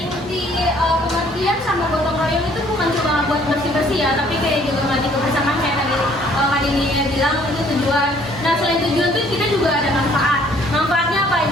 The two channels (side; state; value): both; normal; correlation 0.60